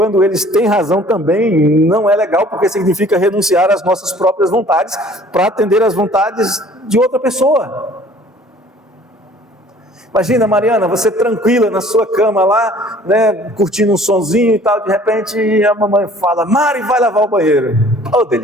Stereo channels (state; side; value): normal; both; correlation 0.52